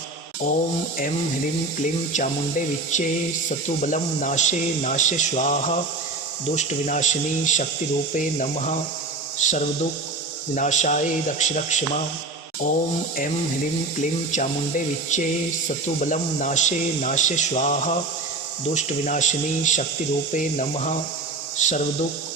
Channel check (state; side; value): quieter; left; 3.4 dB